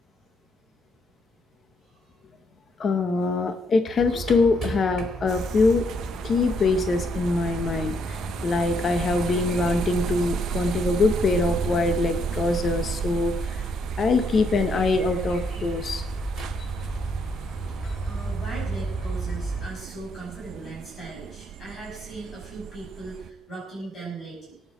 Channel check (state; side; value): normal; both; correlation 0.73